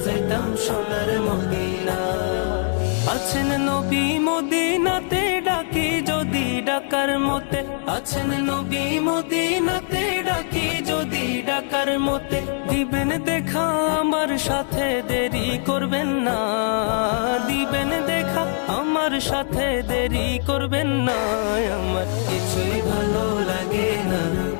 যাইতাম সোনার মদিনা। আছেন নবী মদিনাতে, ডাকি যদি ডাকার মতে। আছেন নবী মদিনাতে, ডাকি যদি ডাকার মতে। দিবেন দেখা আমার সাথে, দেরি করবেন না। দিবেন দেখা আমার সাথে, দেরি করবেন না। আমার কিছুই ভালো লাগে না,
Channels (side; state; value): right; silent; digital silence